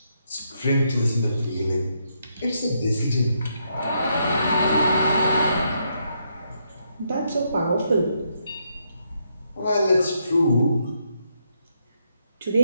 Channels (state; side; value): inverted; both; correlation -0.77